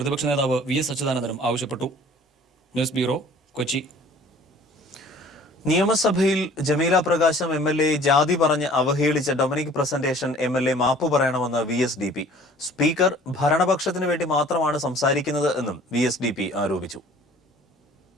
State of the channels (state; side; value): normal; both; correlation 0.50